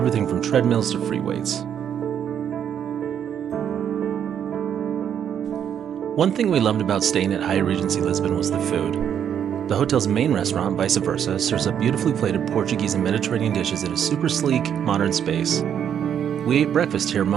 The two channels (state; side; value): quieter; left; 8.9 dB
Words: from treadmills to free weights. One thing we loved about staying at Hyatt Regency Lisbon was the food. The hotel's main restaurant, Vice Versa, serves up beautifully plated Portuguese and Mediterranean dishes in a super sleek, modern space. We ate breakfast here